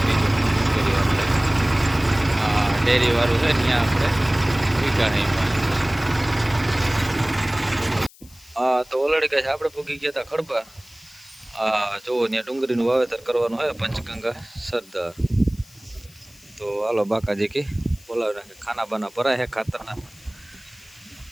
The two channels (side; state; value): left; noise; hiss, 25 dB below the sound